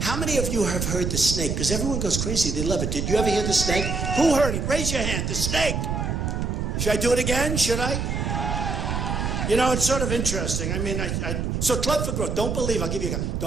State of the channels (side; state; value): right; noise; rumble, 1 dB below the sound